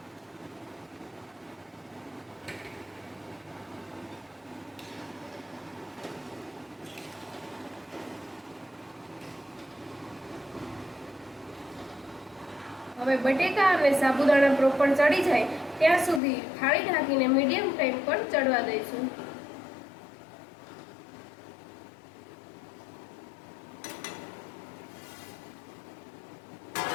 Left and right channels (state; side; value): drops out; right; at 16.2 s